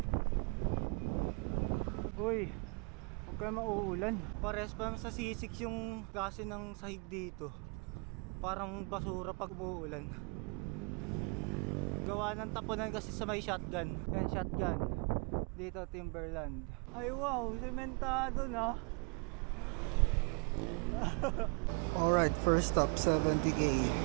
Uy, huwag kayo mauulan. Pares pa sa sisik yung klase ng sahig dito. Parang basura pag umuulan. Gawa ng tapunan kasi sa may shotgun. Yan, shotgun. Dito, Timberland. Ay wow, sementado na. Alright, first stop, 70k.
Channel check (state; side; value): quieter; left; 35.4 dB